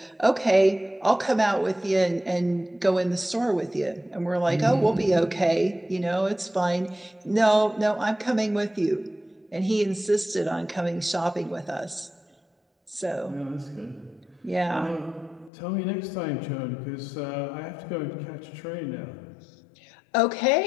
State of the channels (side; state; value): right; drops out; at 15.5 s